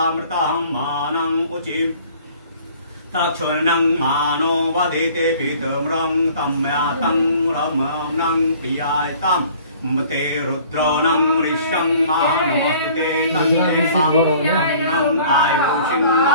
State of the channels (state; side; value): inverted; both; correlation -0.52